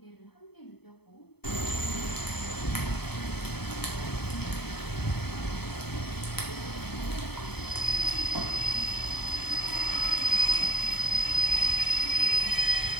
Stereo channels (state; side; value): late; right; 0.97 ms